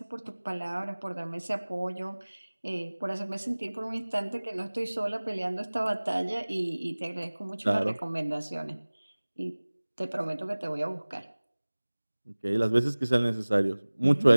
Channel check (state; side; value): inverted; both; correlation -1.00